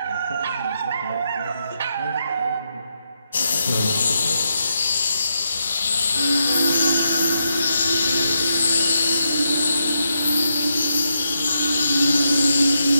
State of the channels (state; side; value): inverted; both; correlation -0.82